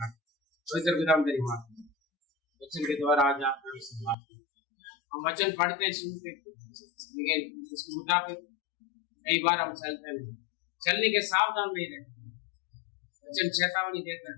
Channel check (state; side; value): drops out; right; at 4.2 s